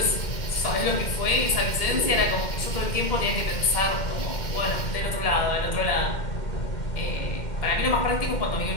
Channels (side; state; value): right; late; 2.1 ms